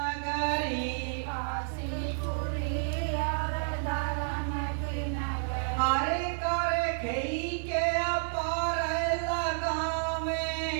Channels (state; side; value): silent; left; digital silence